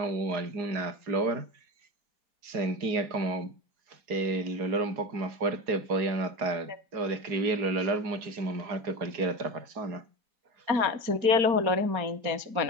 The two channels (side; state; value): left; late; 4.8 ms